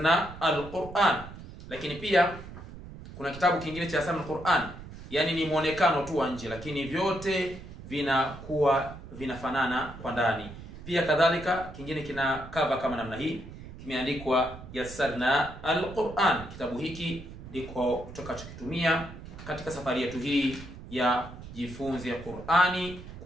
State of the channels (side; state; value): right; noise; rumble, 14 dB below the sound